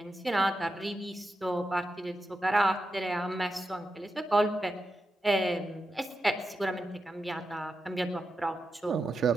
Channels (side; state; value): both; normal; correlation 0.88